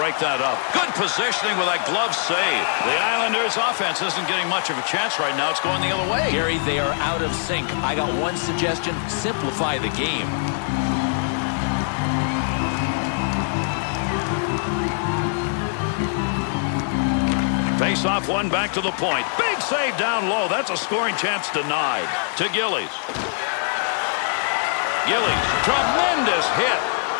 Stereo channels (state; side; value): silent; right; digital silence